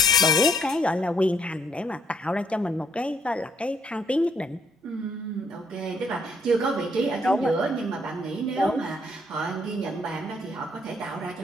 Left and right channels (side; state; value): both; normal; correlation 0.69